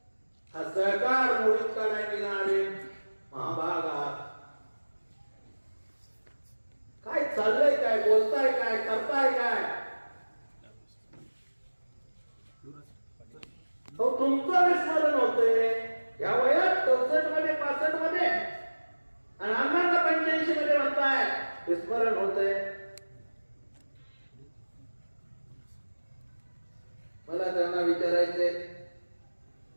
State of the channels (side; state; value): both; inverted; correlation -1.00